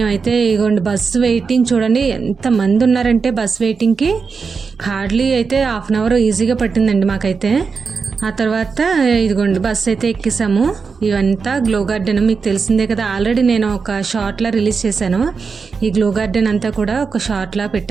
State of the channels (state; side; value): quieter; left; 5.2 dB